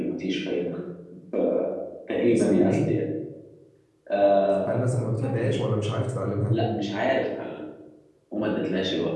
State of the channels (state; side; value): identical; both; correlation 1.00